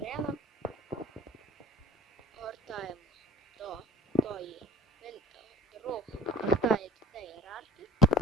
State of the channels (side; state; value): both; normal; correlation 0.48